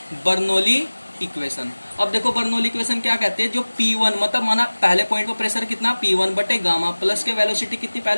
बर्नौली इक्वेशन। अब देखो बर्नौली इक्वेशन क्या कहते हैं, जो P1 मतलब माना पहले पॉइंट पर प्रेशर कितना, P1 बटे गामा, प्लस के वेलोसिटी कितनी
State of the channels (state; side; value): inverted; both; correlation -1.00